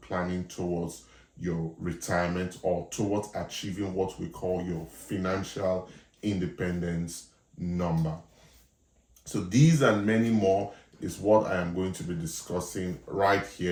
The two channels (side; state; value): both; identical; correlation 1.00